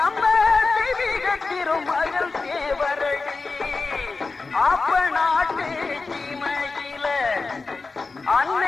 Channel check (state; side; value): quieter; right; 4.0 dB